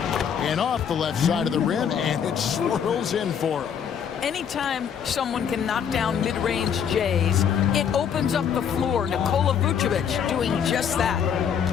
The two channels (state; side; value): quieter; right; 7.9 dB